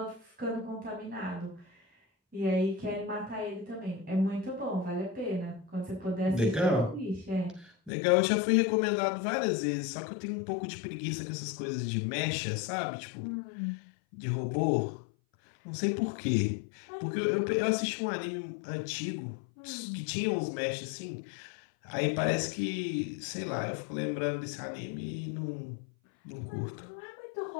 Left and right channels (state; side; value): drops out; right; at 7.9 s